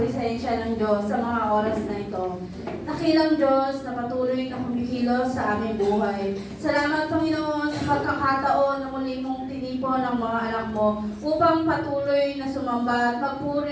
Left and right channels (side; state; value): both; identical; correlation 1.00